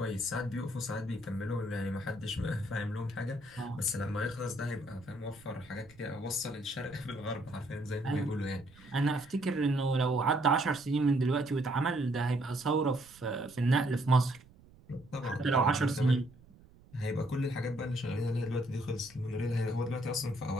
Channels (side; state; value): right; noise; rumble, 24 dB below the sound